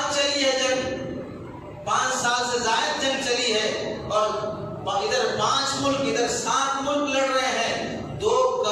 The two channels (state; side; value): identical; both; correlation 1.00